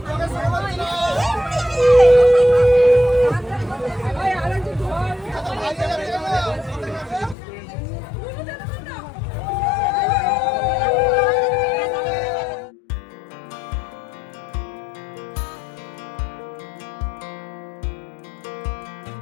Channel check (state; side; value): drops out; right; at 7.4 s